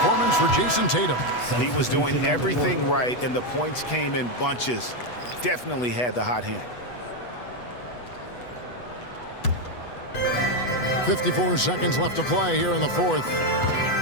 for Jason Tatum. He was doing everything right, and the points came in bunches. Definitely had the hot hand. 54 seconds left to play here in the fourth.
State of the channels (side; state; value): right; late; 8.1 ms